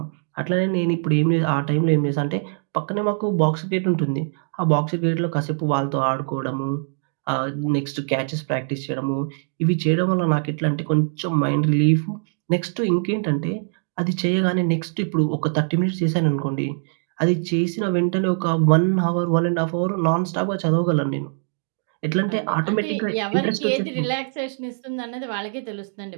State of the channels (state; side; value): silent; left; digital silence